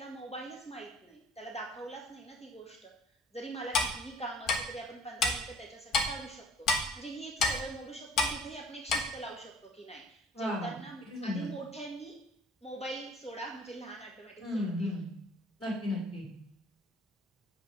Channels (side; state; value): both; normal; correlation 0.51